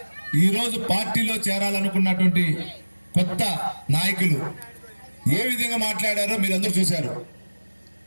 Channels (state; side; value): inverted; both; correlation -1.00